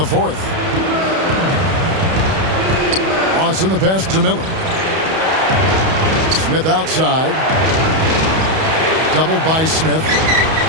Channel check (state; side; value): late; left; 31 ms